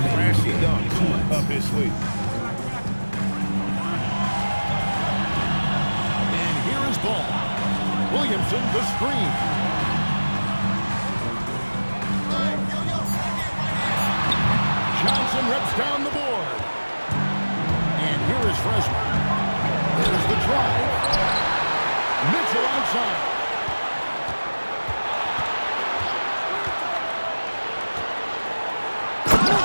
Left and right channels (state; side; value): inverted; both; correlation -1.00